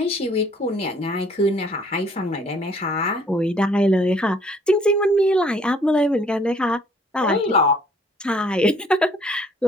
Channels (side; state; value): both; normal; correlation 0.59